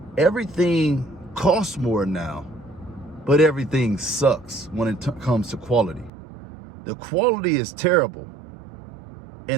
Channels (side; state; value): left; drops out; at 6.1 s